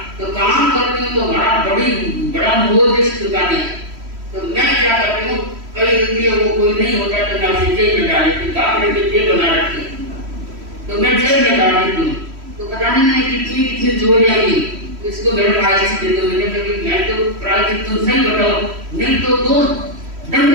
तो काम करती हूँ तो बड़ा मोह जैसी दुकानें है, तो मैं क्या करती हूँ, कई रुपये वो कोई नहीं होता तो मैं उसे जेब में डाल देती, बाप ने जेब बना रखी है, तो मैं जेब में डाल देती हूँ। तो पता नहीं मैं कितनी चोरियां की, इसको मेरे प्रायश्चित दे दो। मैंने कहा मैं तो प्रायश्चित तुम सही बताओ, नहीं तो दो दंड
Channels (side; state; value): left; late; 3.1 ms